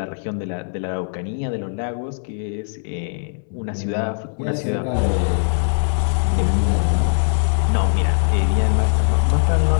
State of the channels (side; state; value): right; silent; 65 dB below the other